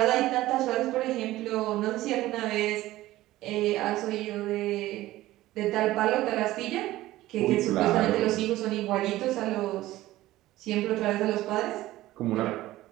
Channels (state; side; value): quieter; left; 16.3 dB